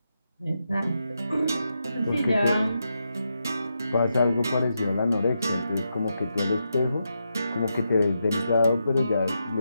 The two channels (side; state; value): both; inverted; correlation -0.85